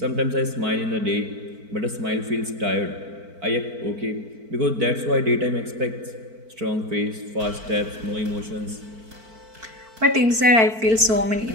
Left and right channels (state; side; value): late; left; 4.5 ms